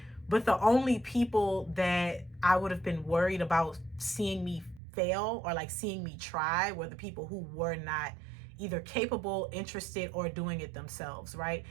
But the only people that I would have been worried about seeing me fail, or like seeing me try, were the people who were not either capable, interested, or doing it themselves, right?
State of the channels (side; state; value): left; drops out; at 4.8 s